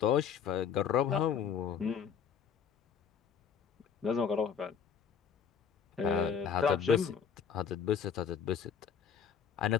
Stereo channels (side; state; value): right; quieter; 7.2 dB